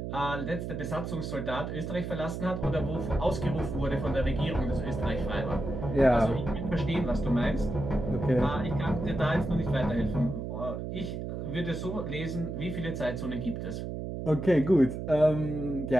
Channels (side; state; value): right; noise; hum, 5 dB below the sound